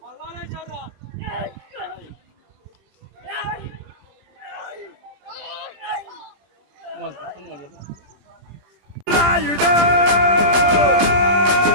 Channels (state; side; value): late; left; 20 ms